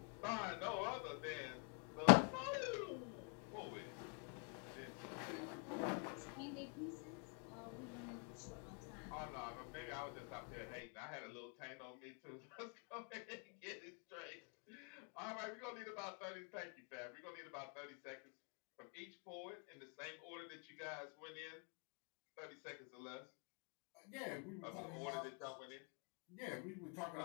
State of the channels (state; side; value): quieter; right; 36.8 dB